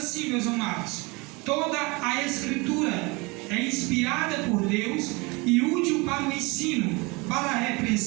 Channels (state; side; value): quieter; left; 26.2 dB